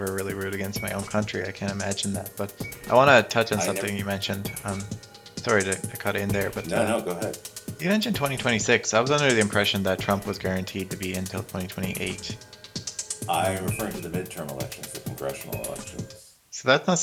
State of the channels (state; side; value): identical; both; correlation 1.00